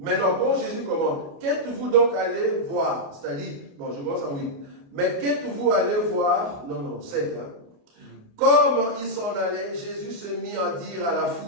quand Jésus commence, qu'êtes-vous donc allé voir? C'est-à-dire, bon, je commence en 8. Mais qu'êtes-vous allé voir? Non, 7. Comme ils s'en allaient, Jésus se mit à dire à la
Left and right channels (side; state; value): left; late; 29 ms